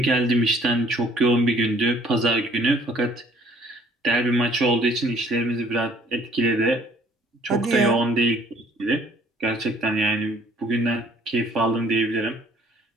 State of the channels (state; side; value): normal; both; correlation 0.58